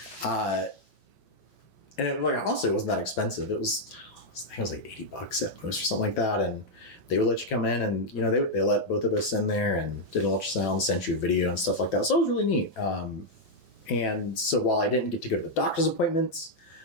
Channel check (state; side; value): late; right; 6.2 ms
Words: And it, like, honestly, it wasn't that expensive. I think it was like $80 at most or something like that. And they would let you come in and, they let both of us in there and did an ultrasound, sent you a video and stuff like that. So it was really neat. And so while I didn't get to go to the doctor's appointments,